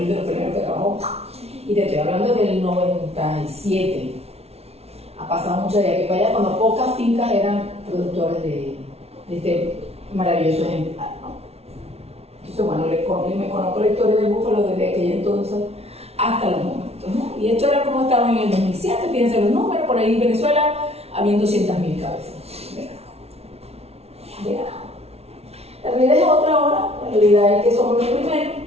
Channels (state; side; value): late; left; 0.30 ms